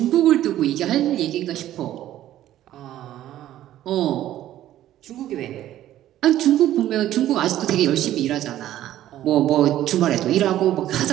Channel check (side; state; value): left; quieter; 13.0 dB